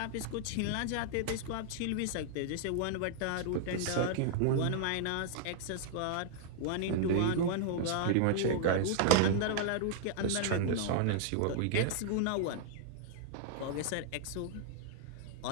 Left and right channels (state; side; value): different; both; correlation -0.01